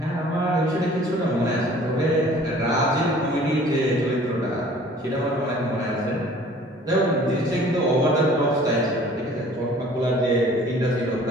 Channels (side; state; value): both; normal; correlation 0.51